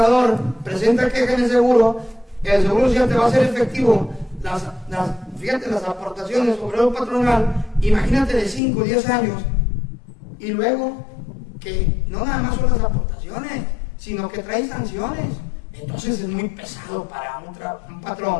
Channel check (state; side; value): drops out; right; at 8.6 s